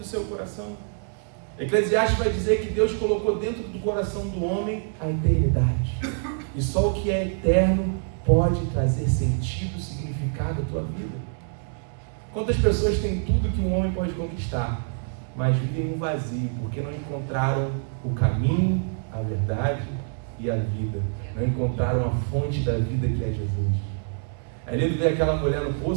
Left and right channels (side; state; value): left; silent; digital silence